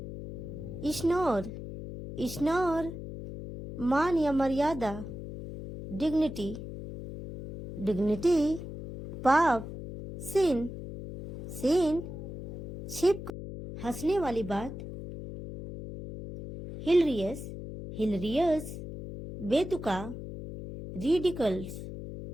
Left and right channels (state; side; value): noise; left; hum, 9 dB below the sound